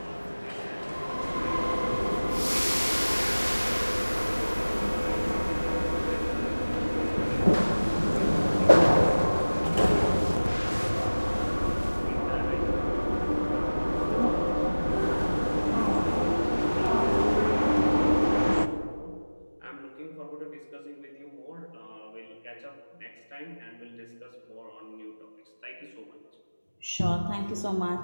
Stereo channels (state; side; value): inverted; both; correlation -1.00